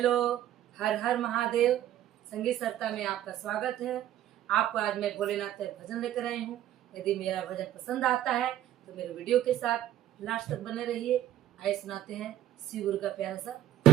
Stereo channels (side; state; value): left; quieter; 12.5 dB